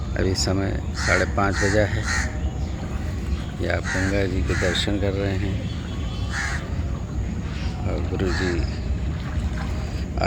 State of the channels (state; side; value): identical; both; correlation 1.00